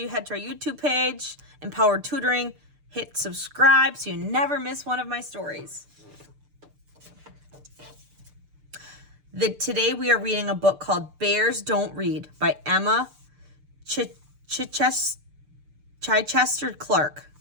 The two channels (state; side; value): late; left; 6.8 ms